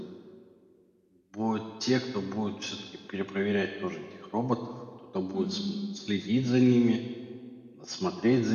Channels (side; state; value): both; identical; correlation 1.00